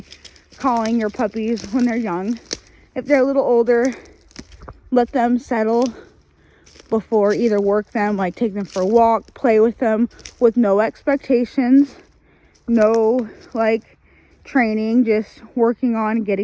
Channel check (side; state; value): both; identical; correlation 1.00